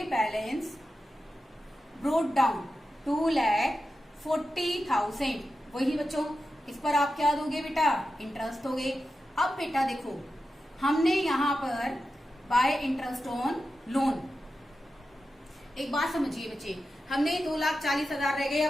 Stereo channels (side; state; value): both; normal; correlation 0.91